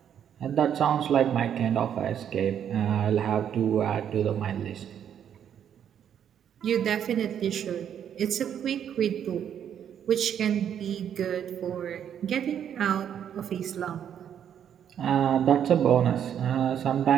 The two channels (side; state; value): left; quieter; 9.1 dB